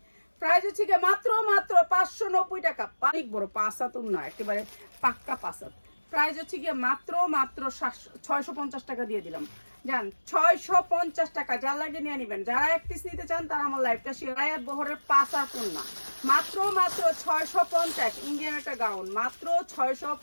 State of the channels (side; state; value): both; inverted; correlation -1.00